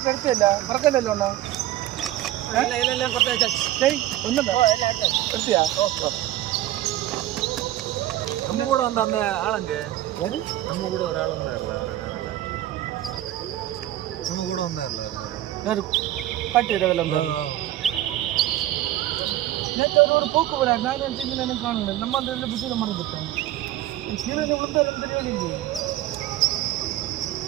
എടുത്തില്ല മറക്കല്ലോ ഒന്നാ എടുത്തിയാ நம்ம கூட வந்த அந்த ஆளுங்க நம்ம கூட ஒரு ஆள் வந்தார்ல அவரை காணல. நம்ம கூட வந்தார்ல அவரு காட்டிடுறதுல நேற்று ஒரு போக்கு வராது. நான் நினச்சிங்க எனக்கு காணல. நம்ம அந்த இதில் பிஸியில் மறந்துட்டோம். சீரனை விழுந்தாலும் தெரியவில்லை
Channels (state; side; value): quieter; left; 14.2 dB